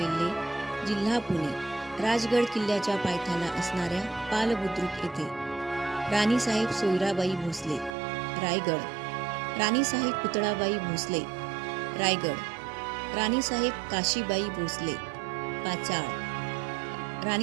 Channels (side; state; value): left; drops out; at 8.0 s